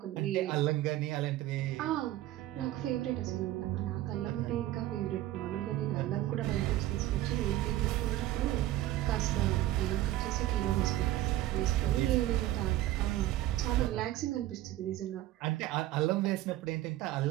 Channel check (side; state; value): left; quieter; 14.8 dB